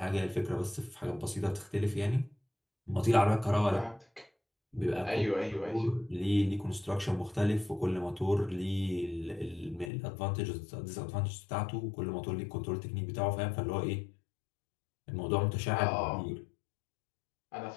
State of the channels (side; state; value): right; drops out; at 9.9 s